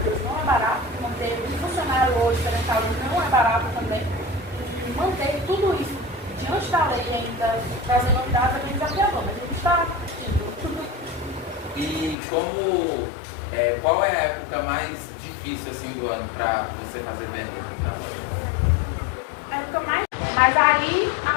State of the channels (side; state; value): right; drops out; at 12.2 s